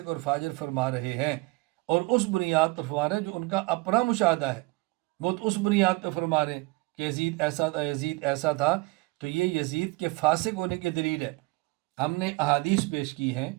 اور فاجر فرما رہے ہیں، اور اس بنیاد پر فرما رہے ہیں جو ان کا اپنا مشاہدہ ہے، وہ تو اس بنیاد پہ فرما رہے ہیں کہ یزید ایسا تھا، یزید ایسا تھا، تو یہ یزید کے فاسق ہونے کی دلیل ہے۔ ہم نے احادیث پیش کی ہیں،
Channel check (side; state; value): left; quieter; 24.0 dB